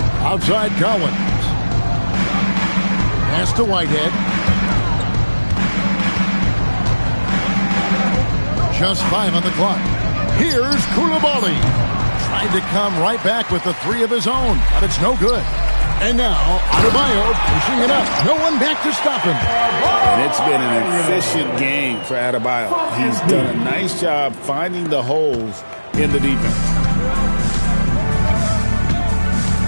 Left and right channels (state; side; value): inverted; both; correlation -1.00